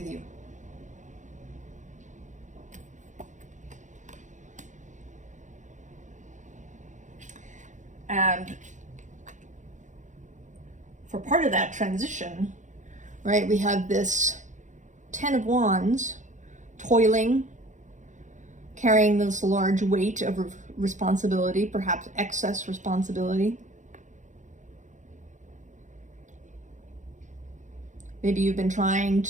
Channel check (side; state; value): left; late; 0.36 ms